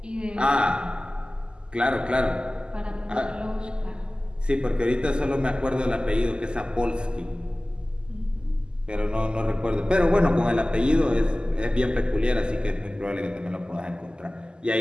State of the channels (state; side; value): late; left; 0.048 ms